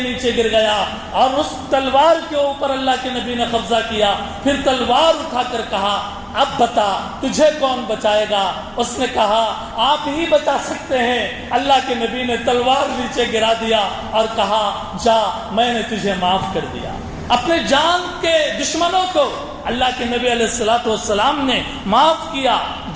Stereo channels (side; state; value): both; identical; correlation 1.00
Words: گر گیا اور اس تلوار کے اوپر اللہ کے نبی نے قبضہ کیا. پھر تلوار اٹھا کر کہا اب بتا تجھے کون بچائے گا؟ اس نے کہا آپ ہی بچا سکتے ہیں. اللہ کے نبی نے تلوار نیچے گرا دیا اور کہا جا میں نے تجھے معاف کر دیا. اپنے جان کے دشمنوں کو اللہ کے نبی علیہ الصلوۃ والسلام نے معاف کیا.